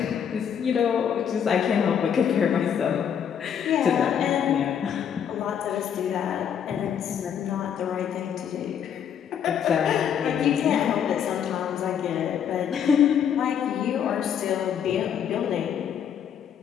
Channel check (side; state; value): right; quieter; 8.4 dB